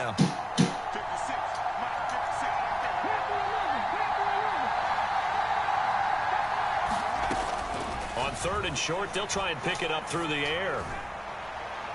On 3rd and short, they'll try and pick it up through the air.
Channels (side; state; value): both; identical; correlation 1.00